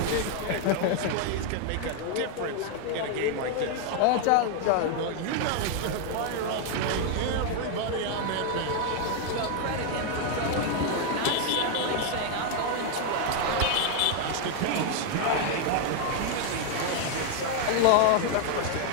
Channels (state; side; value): different; both; correlation 0.00